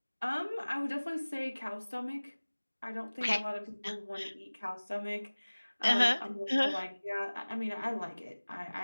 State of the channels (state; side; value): inverted; both; correlation -1.00